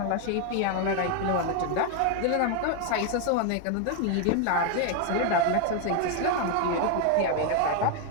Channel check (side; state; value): both; different; correlation 0.01